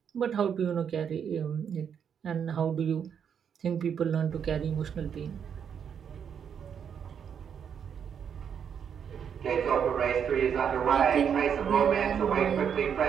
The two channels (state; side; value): quieter; left; 7.7 dB